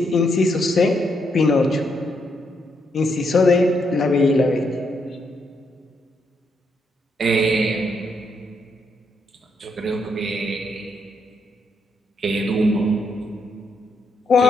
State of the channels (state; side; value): normal; both; correlation 0.77